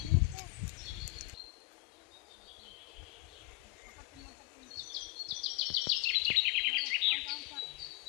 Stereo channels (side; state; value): right; quieter; 25.0 dB